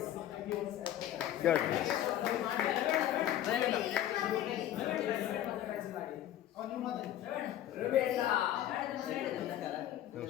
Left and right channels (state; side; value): quieter; right; 12.3 dB